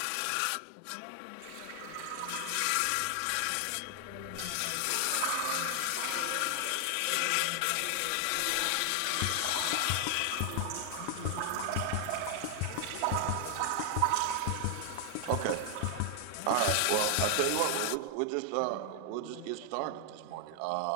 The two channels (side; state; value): both; different; correlation 0.00